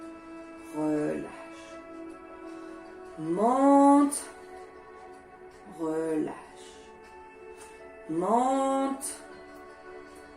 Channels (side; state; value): both; identical; correlation 1.00